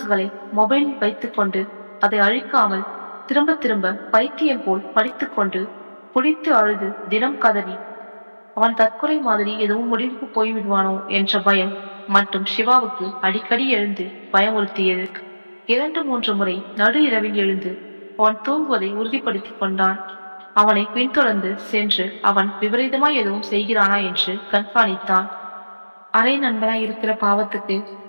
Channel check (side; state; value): both; inverted; correlation -1.00